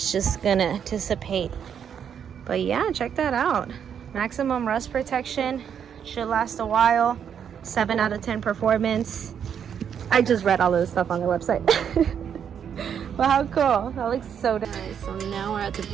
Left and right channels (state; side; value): quieter; left; 8.1 dB